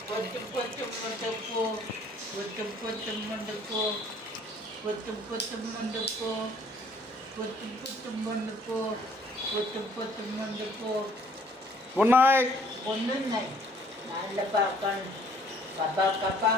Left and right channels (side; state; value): both; normal; correlation 0.59